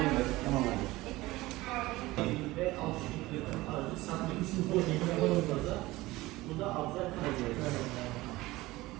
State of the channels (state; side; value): quieter; left; 19.2 dB